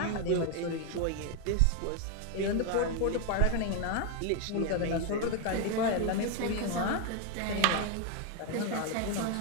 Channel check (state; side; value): different; both; correlation 0.01